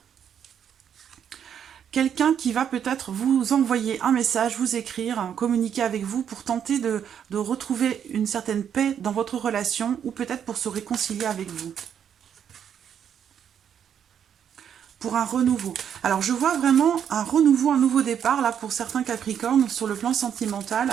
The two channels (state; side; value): quieter; left; 8.6 dB